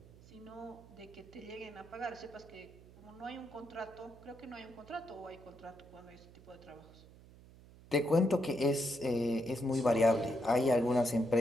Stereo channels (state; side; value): noise; right; hum, 21 dB below the sound